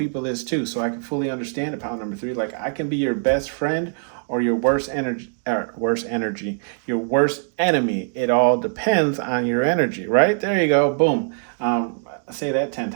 this too, so I can fully understand about number three. Like, I can be your best friend or your worst enemy. Your worst enemy. It all depends on your energy, right? There you go, boom. Say that 10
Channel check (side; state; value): left; silent; digital silence